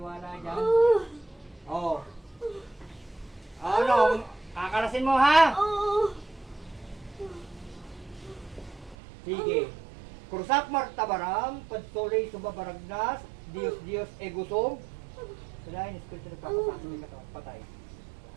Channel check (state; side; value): drops out; left; at 9.0 s